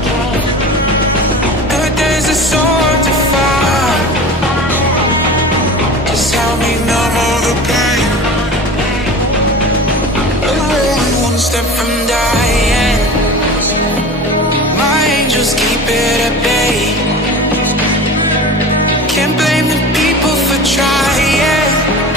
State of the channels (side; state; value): both; normal; correlation 0.35